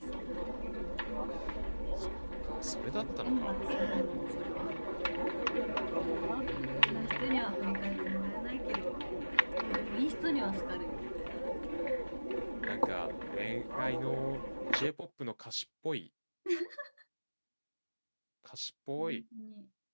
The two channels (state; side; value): inverted; both; correlation -1.00